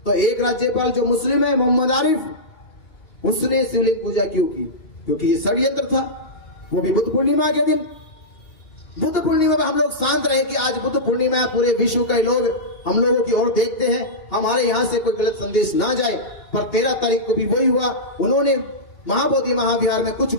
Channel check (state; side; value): late; right; 2.9 ms